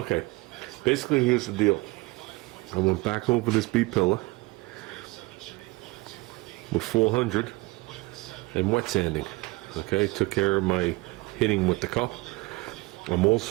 basically here's the deal. I went back over this B-pillar with 400 and wet sanding. Okay, took care of my hitting with the cup. I'm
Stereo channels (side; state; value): left; quieter; 23.1 dB